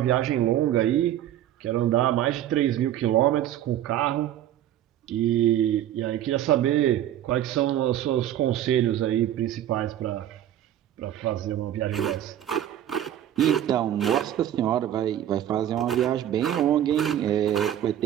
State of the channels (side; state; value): left; quieter; 11.5 dB